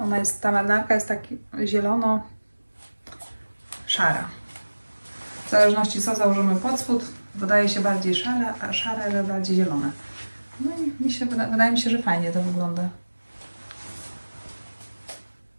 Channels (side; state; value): both; inverted; correlation -1.00